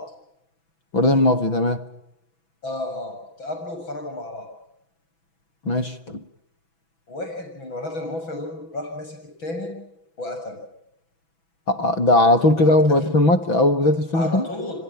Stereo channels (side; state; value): right; late; 6.1 ms